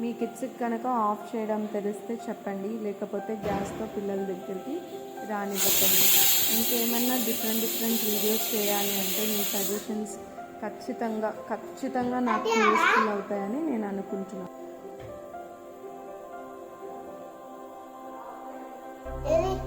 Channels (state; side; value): identical; both; correlation 1.00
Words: మీ కిడ్స్కి కనుక ఆఫ్ చేయడం తెలిస్తే చెప్పండి, లేకపోతే గ్యాస్తో పిల్లల దగ్గరికి రానివ్వకండి. ఇంకేమన్నా డిఫరెంట్ వీడియోస్ చేయాలి అంటే మీ సజెషన్స్ ఖచ్చితంగా నాకు యూస్ఫుల్ అవుతాయని నేను అనుకుంటున్నాను.